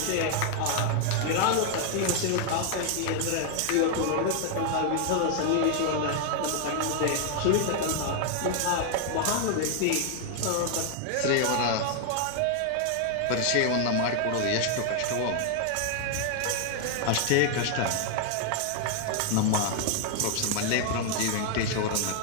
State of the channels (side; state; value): both; different; correlation 0.00